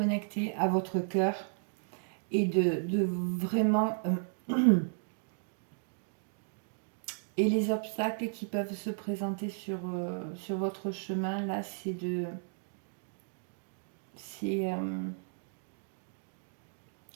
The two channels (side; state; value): left; silent; digital silence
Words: à votre cœur et de vraiment... et les obstacles qui peuvent se présenter sur votre chemin, là, c'est de... C'est...